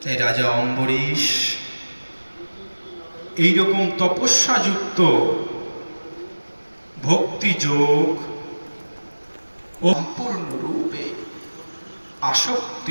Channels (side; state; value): both; inverted; correlation -1.00